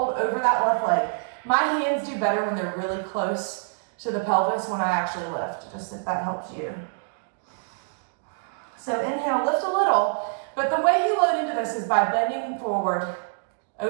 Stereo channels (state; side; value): silent; left; digital silence